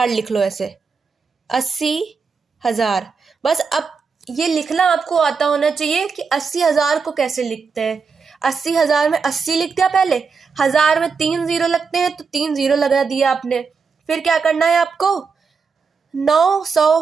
लिख लो, ऐसे 80,000 बस। अब ये लिखना आपको आता होना चाहिए कि 80,000 को कैसे लिखते हैं। 80,000 में 80 लिख दिया पहले, 1000 में 3 जीरो लगते हैं तो 3 जीरो लगा दिया आपने। फिर क्या करना है आपको,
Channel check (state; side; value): quieter; left; 5.2 dB